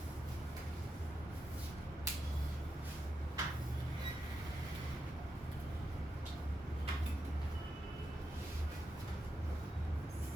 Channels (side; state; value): both; normal; correlation 0.86